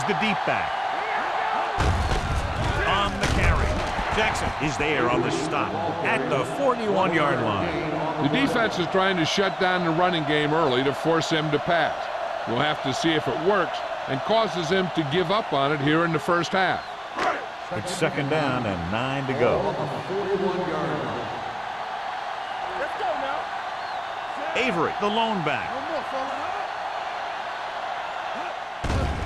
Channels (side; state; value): both; identical; correlation 1.00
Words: the deep back. On the carry. Jackson is there on the stop at the 41-yard line. The defense is trying to shut down the running game early to force him to pass. We'll have to see if it works and causes him to give up on it here in the first half. It's 2nd down and 9 to go. Ball on the 41-yard line. Let's go now. Avery, the lone back. No more, fella.